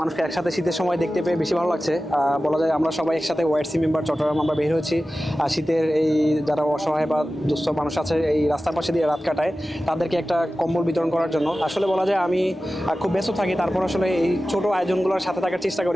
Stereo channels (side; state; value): both; normal; correlation 0.95